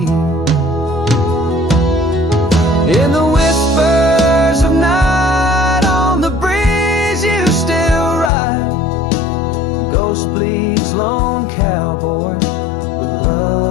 In the whispers of night, on the breeze you still ride. Ghost bleeds, lone cowboy, with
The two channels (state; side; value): drops out; right; at 8.3 s